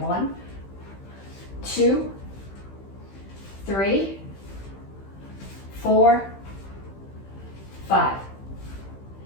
2, 3, 4, 5.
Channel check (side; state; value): right; late; 15 ms